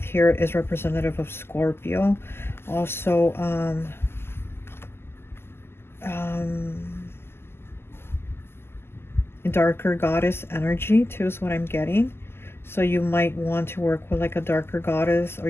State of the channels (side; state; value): right; late; 0.12 ms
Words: here is representative of Scorpio. Also, darker goddess energy too is what I'm getting. So you might want to work with like a darker goddess, or